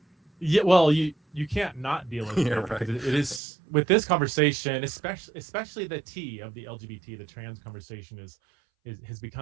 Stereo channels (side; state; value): left; drops out; at 3.4 s